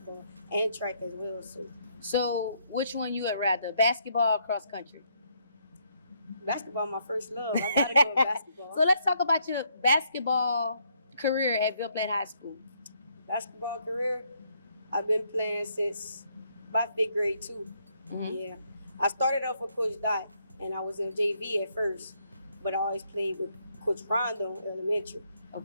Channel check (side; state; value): both; inverted; correlation -0.72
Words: and track as well. So which one you would rather, basketball or cross country? Basketball, my first love. I gotta go with basketball. So let's talk about your basketball career at Ville Platt High School. Basketball career, I've been playing since my 5th grade too. Yeah, I started off with Coach Dot, and I was in JV at first, but I always played with Coach Rondo elementary.